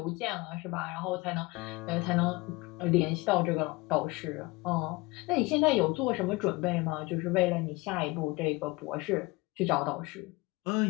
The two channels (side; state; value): right; quieter; 23.5 dB